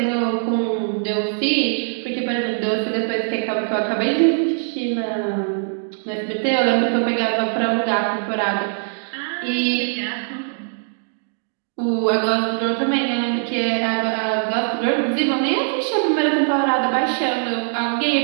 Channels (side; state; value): left; silent; digital silence